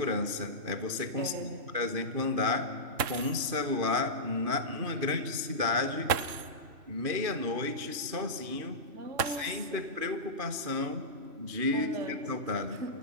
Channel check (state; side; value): late; left; 2.5 ms